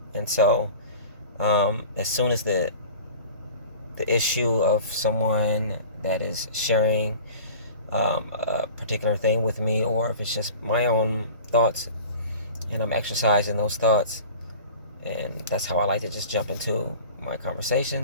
And so, as soon as the issue of someone that is sharing a particular thing with me, or if it's just my own thoughts and I'm exercising those thoughts. And that's how I like to just jump into my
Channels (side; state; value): both; inverted; correlation -0.41